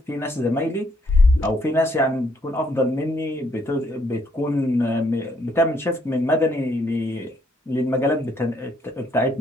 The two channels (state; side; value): normal; both; correlation 0.71